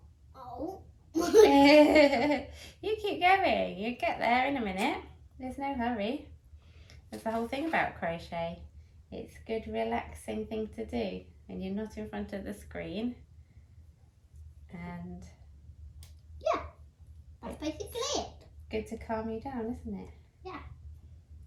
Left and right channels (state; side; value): identical; both; correlation 1.00